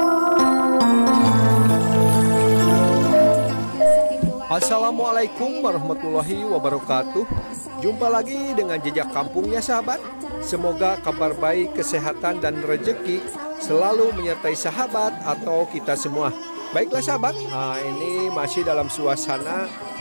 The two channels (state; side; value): inverted; both; correlation -1.00